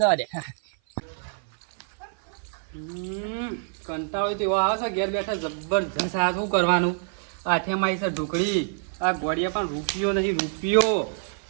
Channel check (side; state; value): left; silent; 56 dB below the other